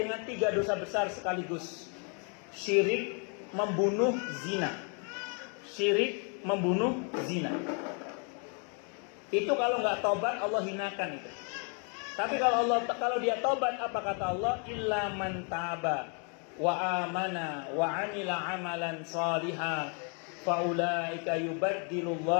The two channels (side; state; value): right; quieter; 39.0 dB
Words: 3 dosa besar sekaligus. Syirik, membunuh, zina. Syirik, membunuh, zina. Itu kalau nggak tobat Allah hinakan itu. Tapi kalau dia tobat, apa kata Allah? Illa man taba wa amana wa amila amalan salihah faulaika